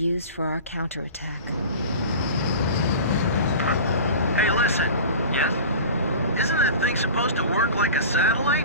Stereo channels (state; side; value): inverted; both; correlation -0.36